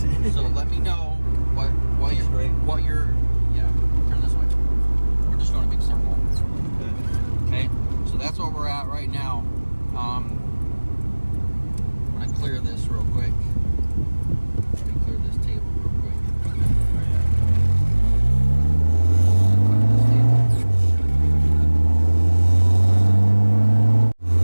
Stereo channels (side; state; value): both; inverted; correlation -1.00